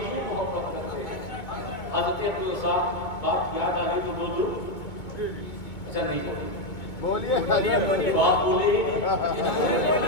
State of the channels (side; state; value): right; late; 2.2 ms